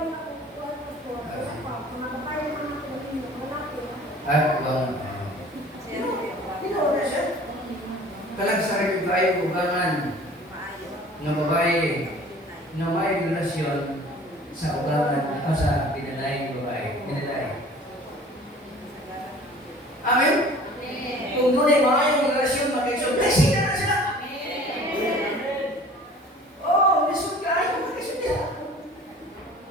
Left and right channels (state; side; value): normal; both; correlation 0.47